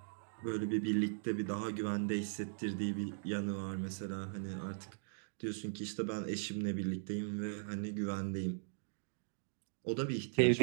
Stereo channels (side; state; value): left; silent; digital silence